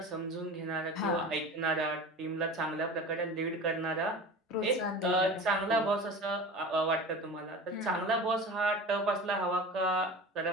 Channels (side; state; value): both; normal; correlation 0.34